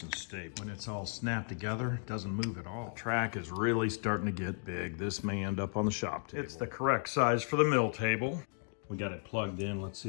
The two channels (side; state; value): right; silent; 54 dB below the other